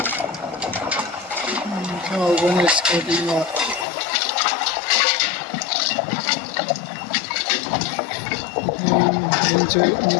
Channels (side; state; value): right; drops out; at 3.9 s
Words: sao con này sẽ đi mà mình chơi những